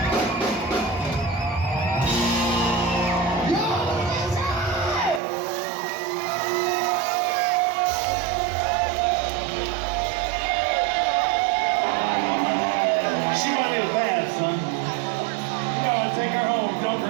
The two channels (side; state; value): left; drops out; at 5.2 s